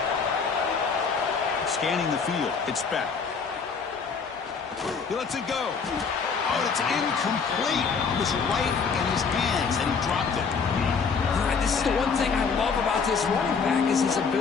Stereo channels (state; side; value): quieter; right; 5.5 dB